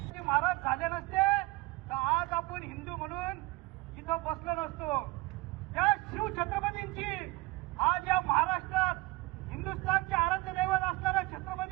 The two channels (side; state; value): left; quieter; 21.6 dB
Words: महाराज झाले नसते तर आज आपण हिंदू म्हणून इथं बसलो नसतो। त्या शिव छत्रपतींची आज या महाराष्ट्रात हिंदुस्थानचे आराध्य दैवत असणाऱ्या